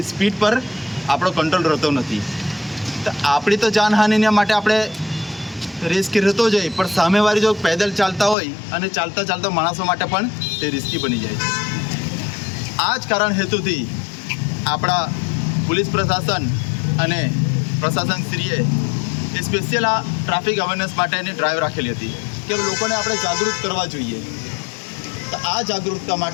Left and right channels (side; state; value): right; drops out; at 8.3 s